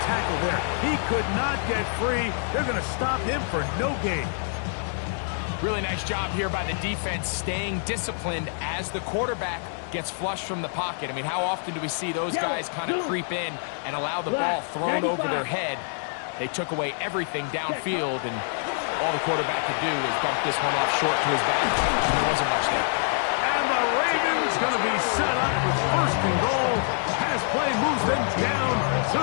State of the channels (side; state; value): right; silent; digital silence